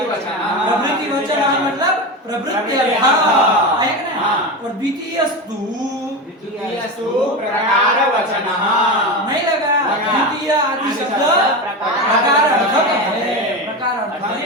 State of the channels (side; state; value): both; normal; correlation 0.21